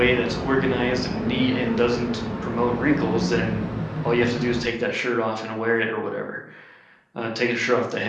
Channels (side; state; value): both; identical; correlation 1.00